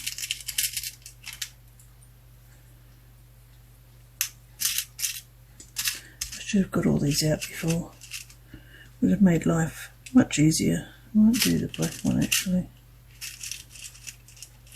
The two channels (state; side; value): identical; both; correlation 1.00